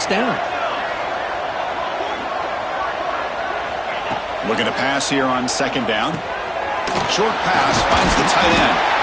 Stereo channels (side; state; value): both; identical; correlation 1.00